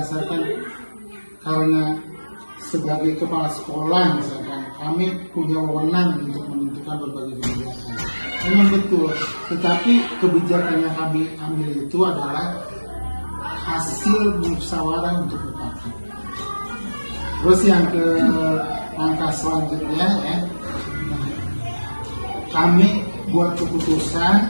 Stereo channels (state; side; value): inverted; both; correlation -1.00